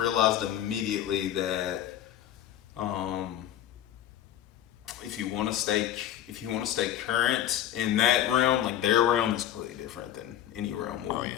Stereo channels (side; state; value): right; quieter; 11.4 dB